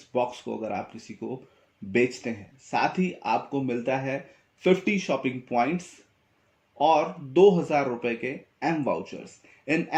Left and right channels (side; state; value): both; identical; correlation 1.00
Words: बॉक्स को अगर आप किसी को बेचते हैं। साथ ही आपको मिलता है 50 शॉपिंग पॉइंट्स और 2,000 रुपए के एम वाउचर्स। इन